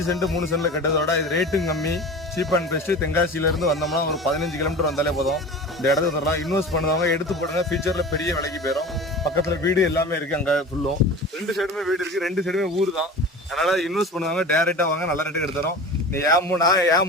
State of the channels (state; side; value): normal; both; correlation 0.35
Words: சென்ட் 3 சென்ட்ல கட்டதோட இது ரேட்டும் கம்மி, சீப் அண்ட் பெஸ்ட். தென்காசியில இருந்து வந்தோம்னா ஒரு 15 கிலோமீட்டர் வந்தாலே போதும். இந்த இடத்துக்கு தரலாம். இன்வெஸ்ட் பண்ணுவாங்க, எடுத்து போடுங்க. ஃபியூச்சர்ல பெரிய விலைக்கு போயிடும். பக்கத்துல வீடு எல்லாமே இருக்கு. அங்க ஃபுல்லும் 2 சைடுமே வீடு இருக்கு. 2 சைடுமே ஊர் தான். அதனால இன்வெஸ்ட் பண்ணுவாங்க. டைரக்டா வாங்க, நல்ல ரேட்டுக்கு எடுத்துறோம். நீ ஏன்